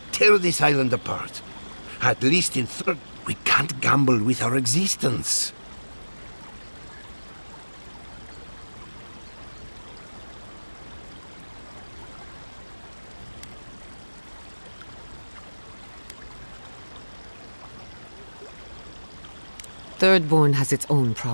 tear this island apart. At least in Third, we can't gamble with our existence. Thirdborn has its own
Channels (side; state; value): both; inverted; correlation -1.00